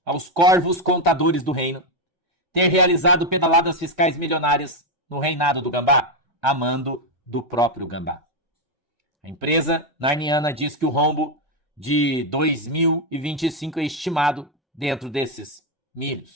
aos corvos contadores do reino ter realizado pedaladas fiscais milionárias no reinado do Gambá, a mando do próprio Gambá. A empresa narniana diz que o rombo de 2025 é estimado dentro desses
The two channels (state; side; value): normal; both; correlation 0.04